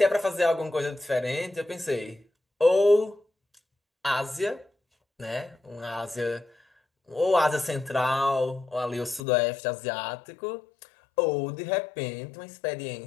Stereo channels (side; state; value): right; drops out; at 9.2 s